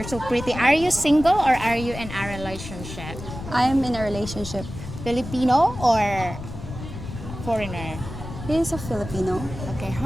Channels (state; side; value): noise; left; rumble, 10 dB below the sound